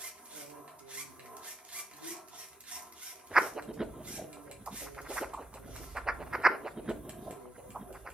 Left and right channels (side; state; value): both; normal; correlation 0.84